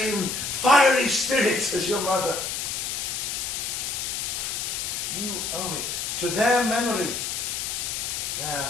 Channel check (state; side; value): noise; left; hiss, 2 dB below the sound